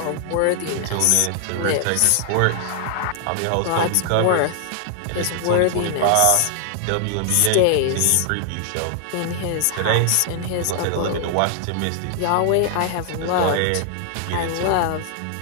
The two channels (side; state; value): both; different; correlation 0.00